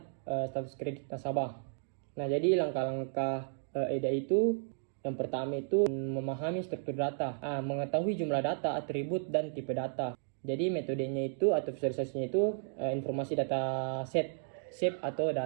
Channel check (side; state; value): left; silent; digital silence